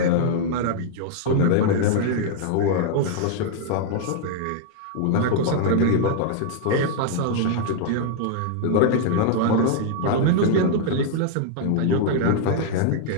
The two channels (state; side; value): different; both; correlation -0.01